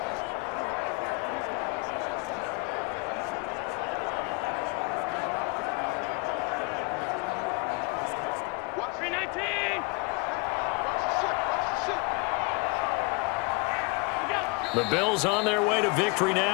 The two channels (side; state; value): right; quieter; 28.8 dB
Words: The Bills on their way to victory